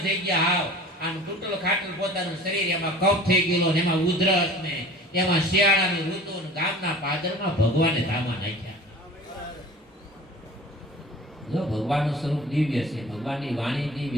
થઈ ગયા. હાવ આમ તૂટલ ખાટલ પોતાનું શરીર, એમાં કફ થઈ ગયેલો ને એમાં ઉધરસ ને એમાં શિયાળાની ઋતુ ને ગામના પાદરમાં ભગવાને ધામા નાખ્યા. જો ભગવાનનું સ્વરૂપ દિવ્ય છે, ભગવાનની વાણી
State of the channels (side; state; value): both; normal; correlation 0.42